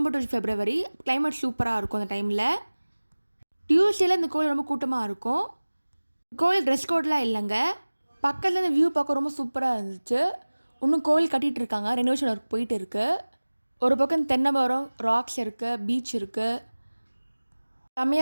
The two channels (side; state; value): both; inverted; correlation -1.00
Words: டு ஃபெப்ரவரி. கிளைமேட் சூப்பராக இருக்கும் அந்த டைமில். டியூஸ்டேல இந்த கோவில் ரொம்ப கூட்டமாக இருக்கும். கோவில் ட்ரெஸ் கோட்லாம் இல்லைங்க. பக்கத்தில் இந்த வியூ பார்க்க ரொம்ப சூப்பராக இருந்துச்சு. இன்னும் கோவில் கட்டிகிட்டு இருக்காங்க. ரெனோவேஷன் ஒர்க் போயிட்டு இருக்குது. ஒரு பக்கம் தென்னை மரம், ராக்ஸ் இருக்குது, பீச் இருக்குது.